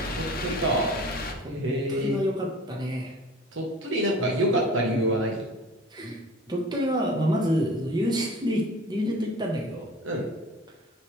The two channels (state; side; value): normal; both; correlation 0.42